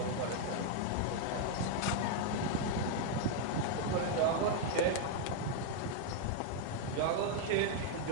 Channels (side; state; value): both; different; correlation 0.00